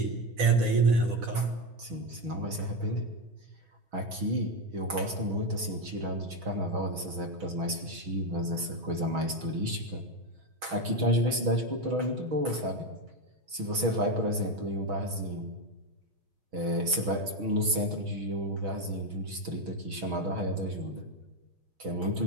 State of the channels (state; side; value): late; left; 6.2 ms